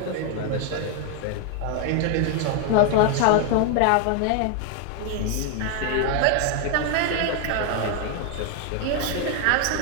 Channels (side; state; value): both; different; correlation 0.01